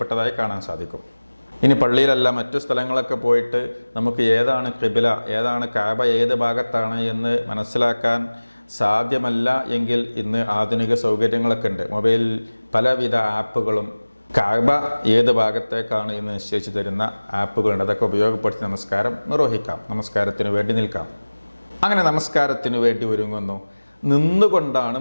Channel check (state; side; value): inverted; both; correlation -1.00